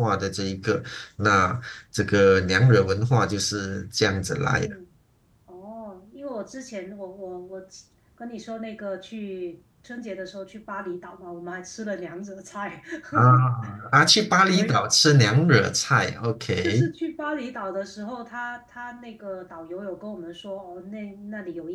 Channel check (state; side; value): identical; both; correlation 1.00